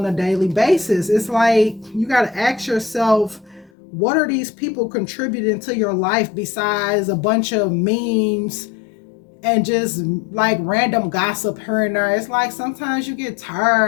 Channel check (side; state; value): right; drops out; at 3.7 s